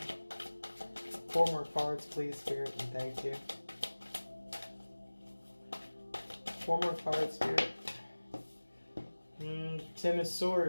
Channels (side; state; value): both; inverted; correlation -1.00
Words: 4 more cards, please, Spirit, and thank you. 4 more cards, Spirit. 10 of